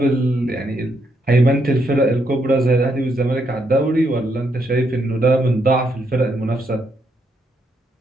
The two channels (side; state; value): both; normal; correlation 0.77